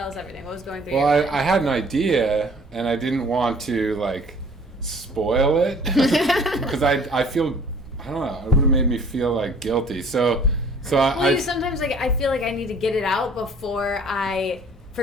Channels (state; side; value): normal; both; correlation 0.53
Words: us everything. What was going through Well, your mind? I had an idea, and I didn't want to like spoil it because I feel, I don't know, it would have made me feel like guilty. So Well, you sometimes like I feel like I need to get it out before I